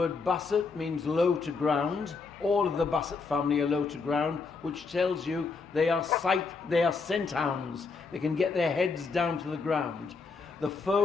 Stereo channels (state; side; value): quieter; right; 4.5 dB